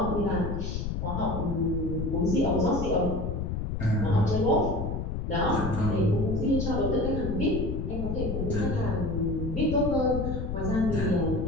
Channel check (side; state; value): left; noise; rumble, 2 dB below the sound